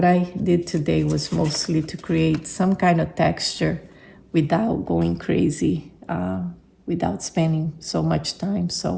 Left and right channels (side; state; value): both; identical; correlation 1.00